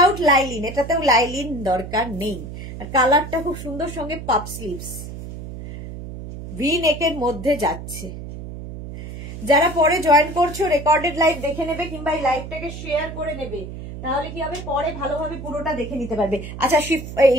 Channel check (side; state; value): right; noise; hum, 10 dB below the sound